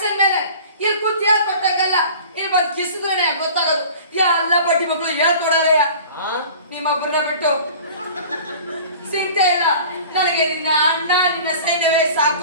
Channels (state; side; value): inverted; both; correlation -0.43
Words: ಮೇಲೆ. ಇಲ್ಲಿ ಕೂತ್ ಹೇಳ್ಕೊಟ್ಟಂಗಲ್ಲ, ಇಲ್ಲಿ ಬಂದು ಕಿಸಿದ್ರೇನೆ ಗೊತ್ತಾಗೋದು. ಎಲ್ಲ ಬಡ್ಡಿ ಮಕ್ಕಳು ಹೇಳ್ಕೊಡೋರಯ್ಯ ನಿಮ್ಮೊಬ್ಬರನ್ನ ಬಿಟ್ಟು. ಚಿಂತೆ ಇಲ್ಲ, ನನಗೆ ನಿನ್ನ ಅಣ್ಣ ನಿನ್ನ ಸೈನ್ಯವೇ